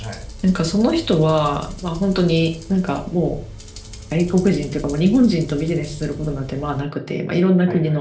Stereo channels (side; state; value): both; identical; correlation 1.00